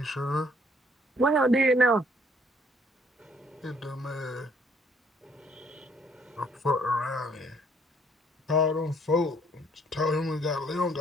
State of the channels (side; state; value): both; normal; correlation 0.63